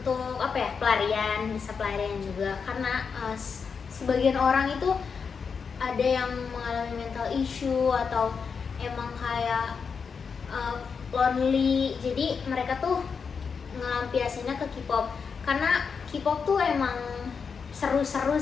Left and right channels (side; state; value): right; quieter; 5.8 dB